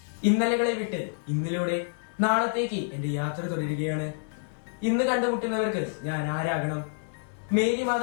ഇന്നലകളെ വിട്ട് ഇന്നലയുടെ നാളത്തേക്ക് എന്റെ യാത്ര തുടരുകയാണ്. ഇന്ന് കണ്ടുമുട്ടുന്നവർക്ക് ഞാൻ ആരാകണം? മേരി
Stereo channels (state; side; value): silent; right; 59 dB below the other